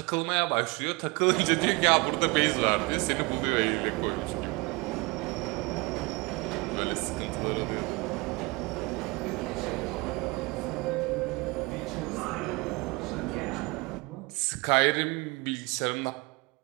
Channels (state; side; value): quieter; left; 26.1 dB